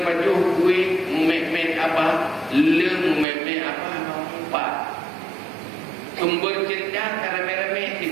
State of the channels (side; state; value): left; drops out; at 3.2 s